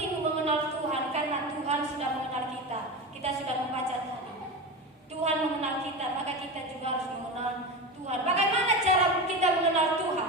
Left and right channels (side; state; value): both; normal; correlation 0.23